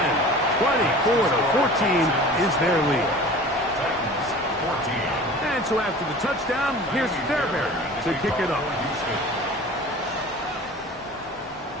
24-14 is their lead. And so after the touchdown, here's Fairbairn to kick it off.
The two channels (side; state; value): both; normal; correlation 0.41